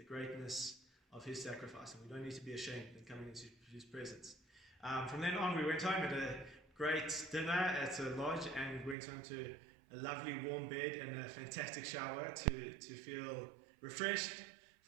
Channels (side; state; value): left; drops out; at 9.0 s